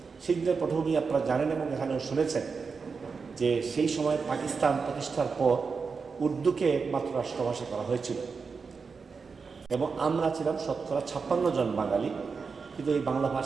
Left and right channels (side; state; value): left; quieter; 5.1 dB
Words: সেই দিনের পটভূমি আপনারা জানেন এবং এখানেও শুনেছেন যে সেই সময় পাকিস্তান প্রতিষ্ঠার পর উর্দুকে একমাত্র রাষ্ট্রভাষা করা হয়েছিল এবং আমরা ছিলাম শতকরা 56 জন বাঙালি, কিন্তু এই বাংলা